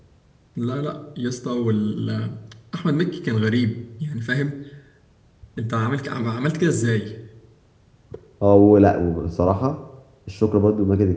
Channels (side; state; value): both; identical; correlation 1.00